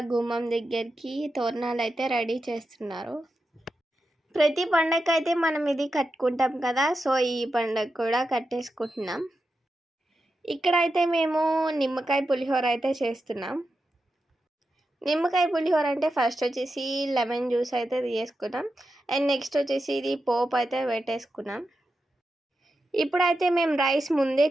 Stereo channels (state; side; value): normal; both; correlation 0.89